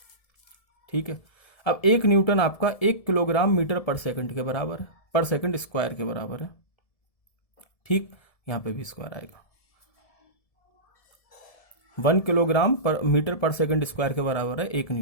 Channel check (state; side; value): late; right; 1.7 ms